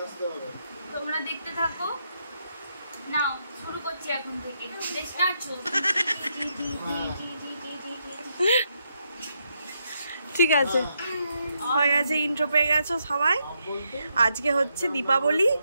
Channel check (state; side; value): inverted; both; correlation -0.79